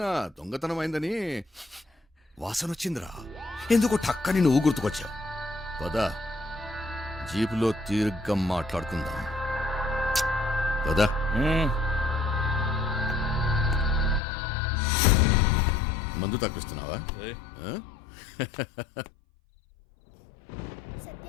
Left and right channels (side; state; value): right; drops out; at 14.2 s